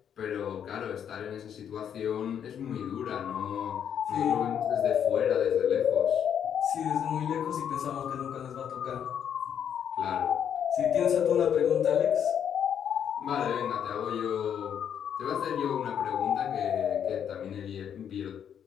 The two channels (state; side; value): quieter; right; 8.7 dB